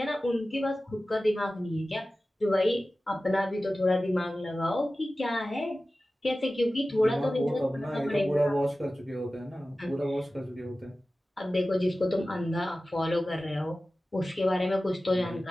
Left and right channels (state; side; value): normal; both; correlation 0.95